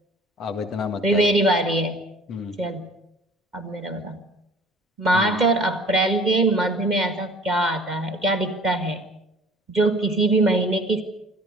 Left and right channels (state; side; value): normal; both; correlation 0.50